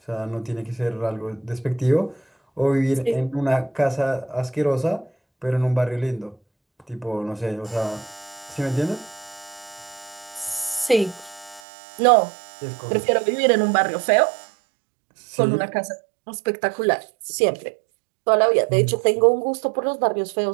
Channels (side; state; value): left; drops out; at 11.6 s